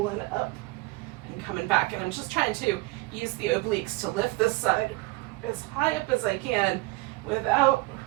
up and coming back. And I'm just trying to use the obliques to lift this side as high up as I can without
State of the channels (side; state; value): left; quieter; 22.5 dB